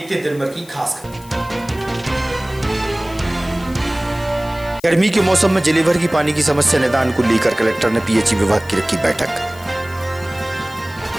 हैं दिन भर की खास खबर। गर्मी के मौसम में जिले भर की पानी की समस्या निदान को लेकर कलेक्टर ने पीएचई विभाग की रखी बैठक।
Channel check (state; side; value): noise; left; hiss, 22 dB below the sound